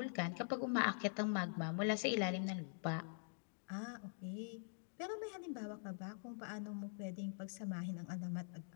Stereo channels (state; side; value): silent; right; digital silence